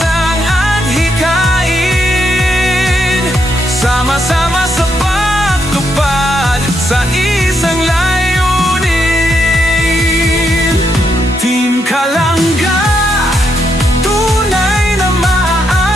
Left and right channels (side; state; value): both; normal; correlation 0.79